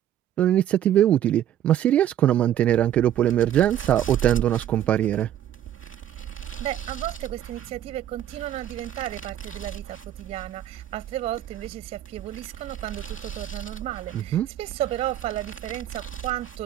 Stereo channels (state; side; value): quieter; left; 11.3 dB